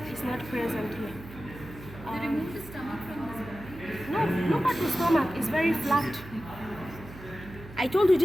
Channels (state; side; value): noise; right; hum, 16 dB below the sound